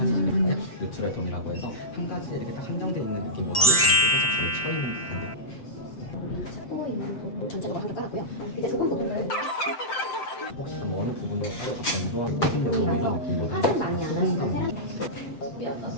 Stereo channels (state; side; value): late; right; 7.7 ms